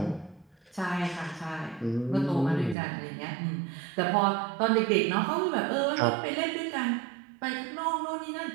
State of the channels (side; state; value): left; drops out; at 2.8 s